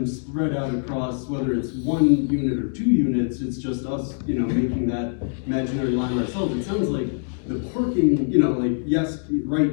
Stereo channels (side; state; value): right; silent; digital silence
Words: spread out across, whether it's 1 unit or 2 units, it's just us, making that imaginary line ourselves. It sounds like the parking, like, yes, right